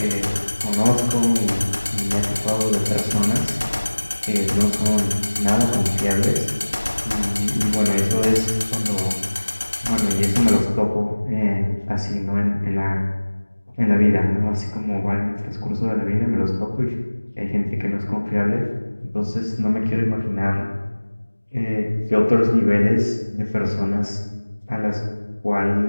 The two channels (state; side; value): inverted; both; correlation -1.00